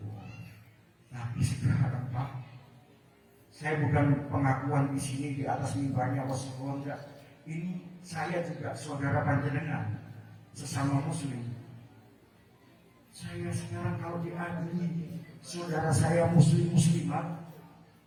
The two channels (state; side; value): identical; both; correlation 1.00